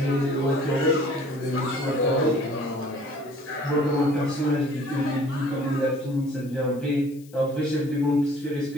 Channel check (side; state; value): left; noise; hiss, 26 dB below the sound